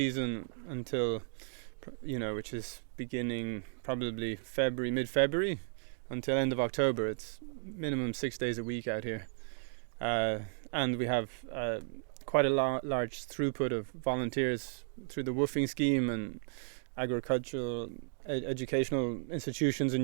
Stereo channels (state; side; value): silent; left; digital silence